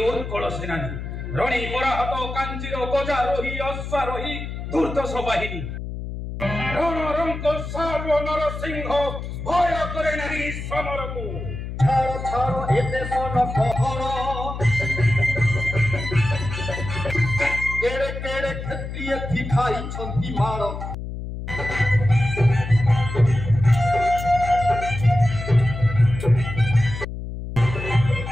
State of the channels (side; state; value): left; noise; hum, 7 dB below the sound